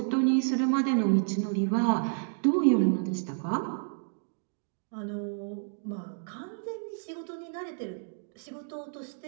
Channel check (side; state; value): left; silent; digital silence